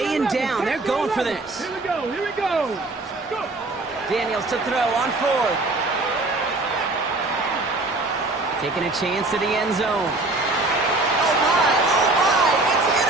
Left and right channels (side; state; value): left; quieter; 3.0 dB